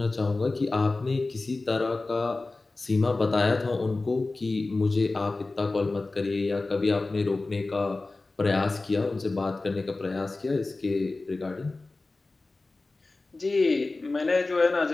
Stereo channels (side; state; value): right; quieter; 3.3 dB